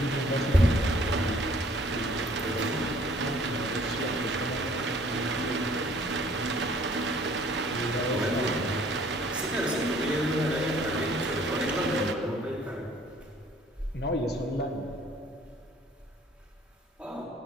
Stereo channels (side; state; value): both; normal; correlation 0.57